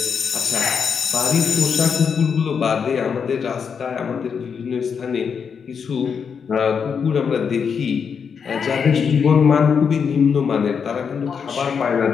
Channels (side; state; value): right; quieter; 6.5 dB